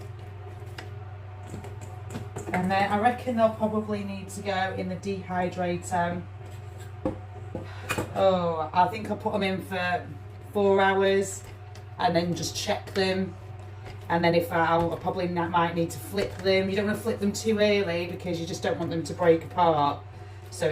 And then I reckon they'll probably need to go in the dehydrator. Oh, I think I'll put them in for 4 hours and then just check them. And then if I probably might need to flip them. You don't want to flip them too early because you just don't want them to break apart. So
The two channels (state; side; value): identical; both; correlation 1.00